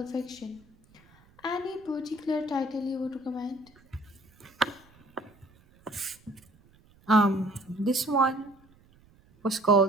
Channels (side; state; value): right; noise; rumble, 29 dB below the sound